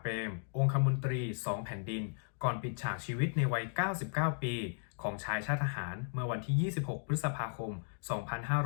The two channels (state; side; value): silent; right; digital silence